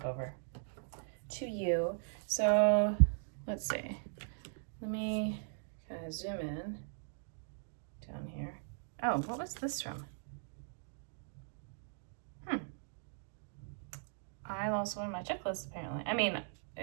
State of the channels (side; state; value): left; silent; digital silence